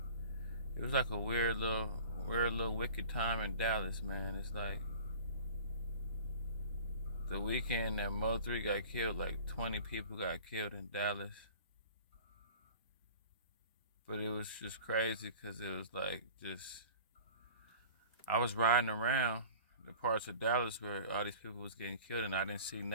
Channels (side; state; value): both; inverted; correlation -0.42